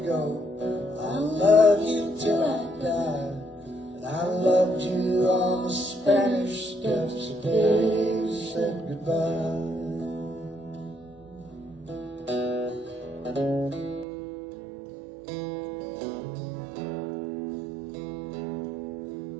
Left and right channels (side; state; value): left; drops out; at 14.1 s